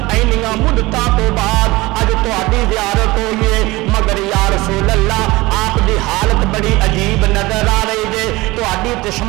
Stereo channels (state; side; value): quieter; left; 20.8 dB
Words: اینیاں مدتاں تو بعد اج تہاڈی زیارت ہوئی ہے، مگر یا رسول اللہ آپ دی حالت بڑی عجیب نظر آ رہی ہے، تہاڈی